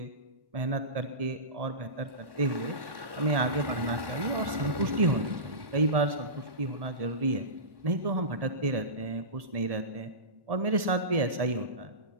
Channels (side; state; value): left; late; 1.1 ms